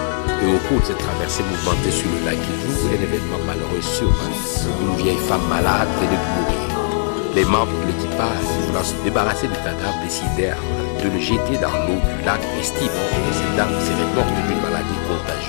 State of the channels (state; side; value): silent; right; digital silence